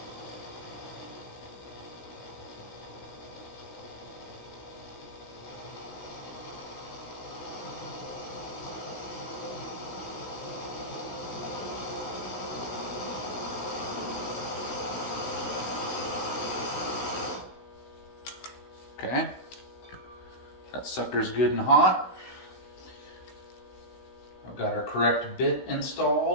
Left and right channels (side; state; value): right; late; 16 ms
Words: Okay, that sucker's good and hot. I've got our correct bit